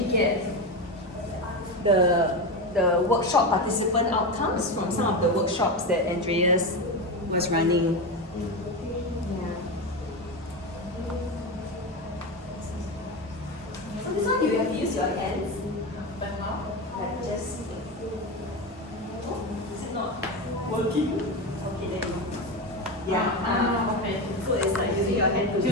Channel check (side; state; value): both; normal; correlation 0.17